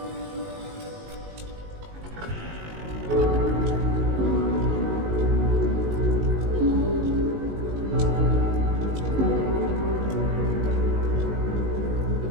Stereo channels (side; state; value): left; late; 19 ms